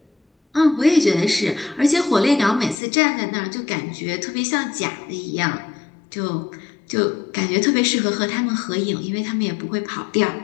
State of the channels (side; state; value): right; drops out; at 2.8 s